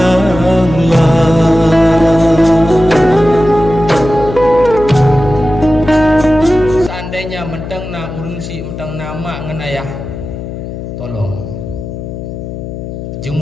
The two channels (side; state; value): left; noise; hum, 9 dB below the sound